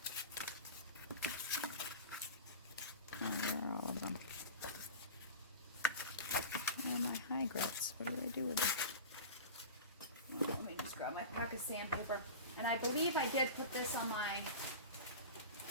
Where are all of them? Where are my high grits? What did I do with them? Let me just grab my pack of sandpaper. And I believe I did put this on my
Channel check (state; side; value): inverted; both; correlation -0.30